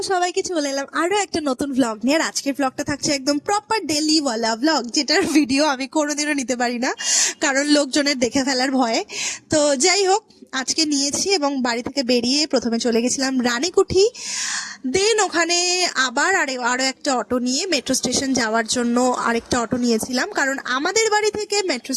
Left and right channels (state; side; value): identical; both; correlation 1.00